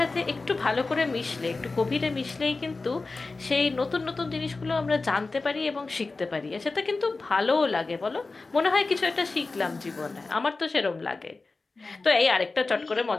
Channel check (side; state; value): right; quieter; 3.7 dB